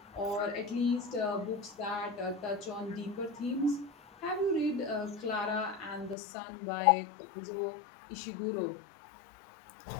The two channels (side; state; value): right; drops out; at 6.2 s